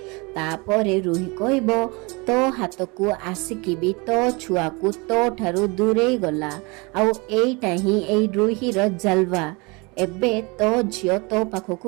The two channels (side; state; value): left; quieter; 27.6 dB